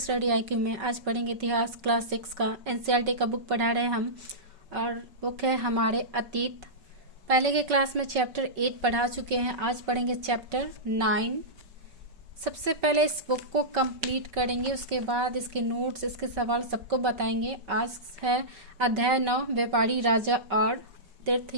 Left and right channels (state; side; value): late; left; 5.3 ms